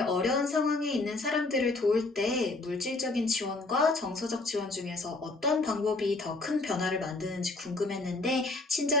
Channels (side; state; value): right; quieter; 3.2 dB